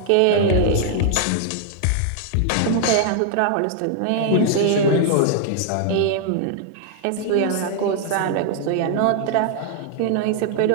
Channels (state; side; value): different; both; correlation 0.00